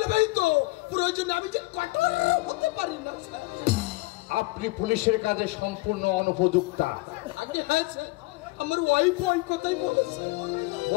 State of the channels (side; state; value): right; quieter; 22.2 dB